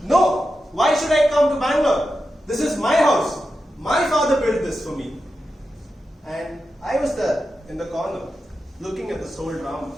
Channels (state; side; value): normal; both; correlation 0.90